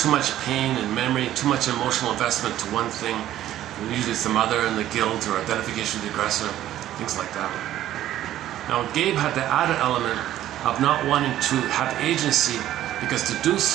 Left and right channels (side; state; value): left; quieter; 12.9 dB